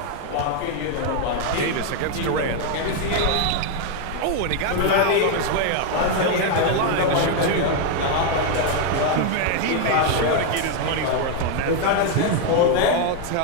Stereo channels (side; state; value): both; different; correlation 0.01